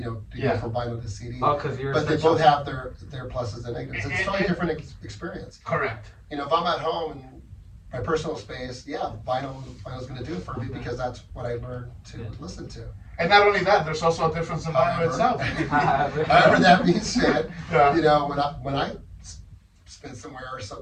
to go from vinyl to CD. Oh, because but they both have their pluses and negatives. It's a totally different experience. Correct. If I'm at home in my personal space, vinyl's going to do it for me, because that's what I learned to listen to. And not only that, there's also a difference in vinyl itself. However, that being said, when I spend somewhere or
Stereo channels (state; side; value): identical; both; correlation 1.00